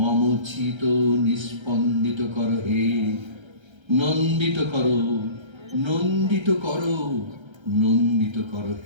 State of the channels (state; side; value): late; left; 1.3 ms